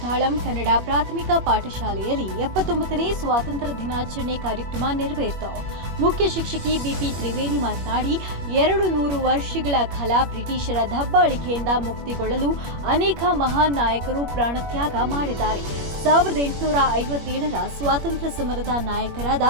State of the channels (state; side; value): late; left; 21 ms